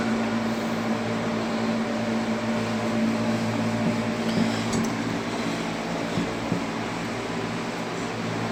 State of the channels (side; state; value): both; identical; correlation 1.00